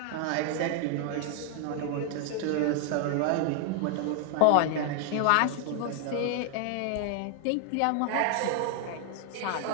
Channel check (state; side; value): different; both; correlation 0.00